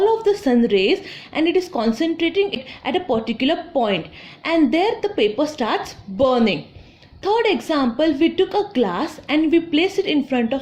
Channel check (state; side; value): identical; both; correlation 1.00